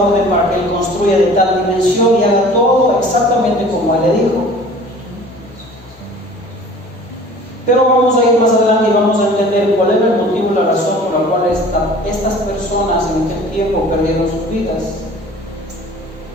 para que él construya de tal dimensión y haga todo exactamente como él le dijo. Pero vamos a ir más adelante y vamos a entender cuál era el motivo y la razón por la cual estas personas en aquel tiempo perdieron sus vidas.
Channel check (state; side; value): normal; both; correlation 0.46